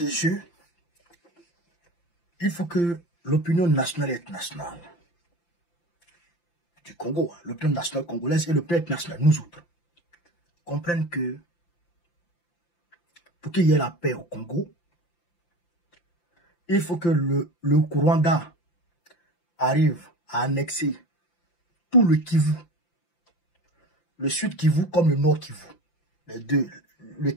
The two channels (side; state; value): right; late; 5.8 ms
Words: jeu, il faut que l'opinion nationale et internationale du Congo, l'opinion nationale congolaise et l'opinion internationale, nous autres, comprennent que pour qu'il y ait la paix au Congo, il faut que le Rwanda arrive à annexer tout le Kivu, le Sud Kivu comme le Nord Kivu, les deux, le